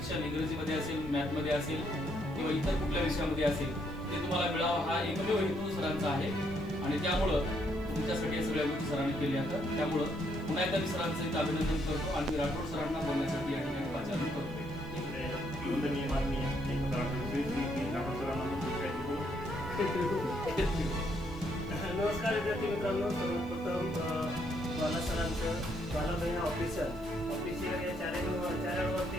इंग्रजीमध्ये असेल, मॅथमध्ये असेल किंवा इतर कुठल्या विषयामध्ये असेल ते तुम्हाला मिळावं हा एकमेव हेतू सरांचा आहे आणि त्यामुळं तुमच्यासाठी या सगळ्या गोष्टी सरांनी केल्या आहेत. त्यामुळं पुन्हा एकदा मी सरांचं इथं अभिनंदन करतो आणि राठोड सरांना बोलण्यासाठी या ठिकाणी वाचायला करतो. नमस्कार विद्यार्थी मित्रांनो, सर्वप्रथम बाला सरांचं बाला बहिणा ऑफिशियल या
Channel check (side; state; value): right; noise; hiss, 27 dB below the sound